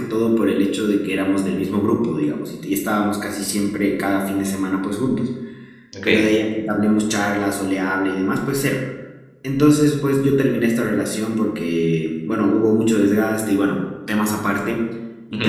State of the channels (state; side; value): identical; both; correlation 1.00